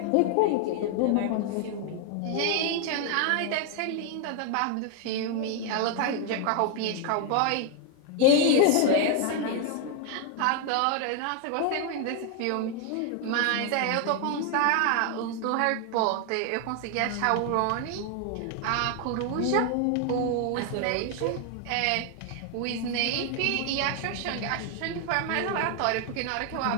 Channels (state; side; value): different; both; correlation 0.00